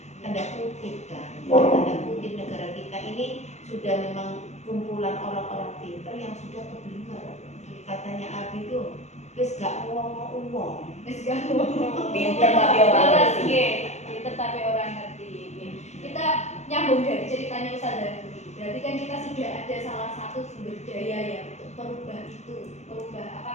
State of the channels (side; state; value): right; late; 0.33 ms